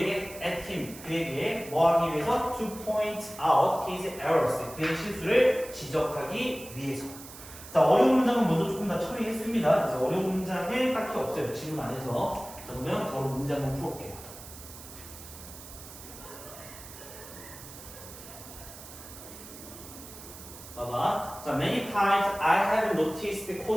at him. 그에게 뭐 하기 위해서? to point out his errors. 그의 실수를 지적하기 위해서. 자, 어려운 문장은 먼저 조금 다 처리했습니다. 그래서 어려운 문장은 딱히 없어요. 질문 안에서. 자, 그러면 바로 문제 한번 풀어볼게요. 봐봐. 자, many times I have noticed the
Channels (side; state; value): right; noise; hiss, 15 dB below the sound